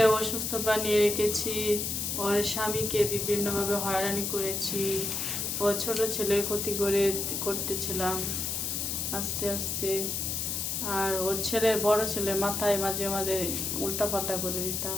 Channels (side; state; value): left; noise; hiss, 1 dB below the sound